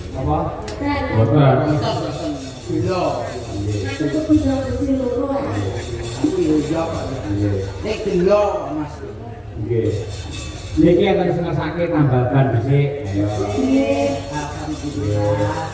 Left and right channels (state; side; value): identical; both; correlation 1.00